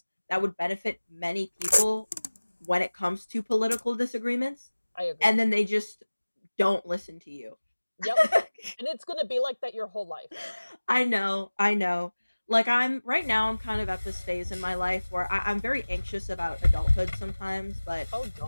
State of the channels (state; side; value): inverted; both; correlation -1.00